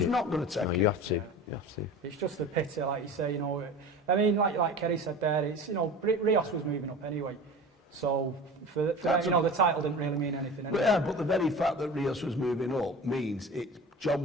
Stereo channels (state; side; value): normal; both; correlation 0.35